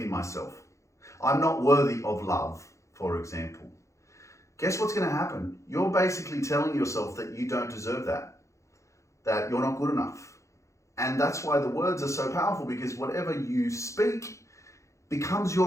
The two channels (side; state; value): right; late; 0.15 ms